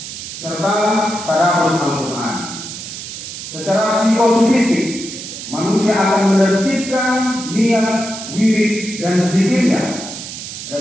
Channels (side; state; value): right; noise; hiss, 10 dB below the sound